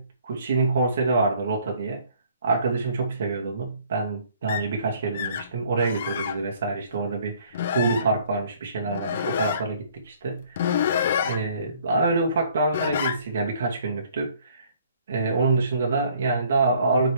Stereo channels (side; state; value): both; inverted; correlation -0.59